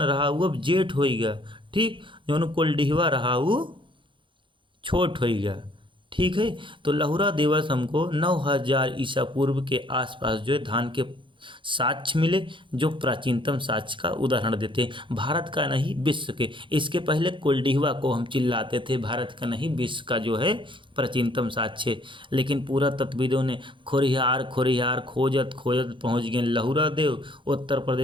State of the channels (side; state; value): left; late; 0.24 ms